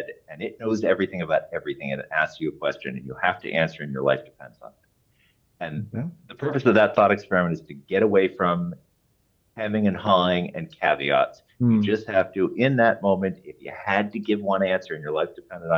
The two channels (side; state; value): both; identical; correlation 1.00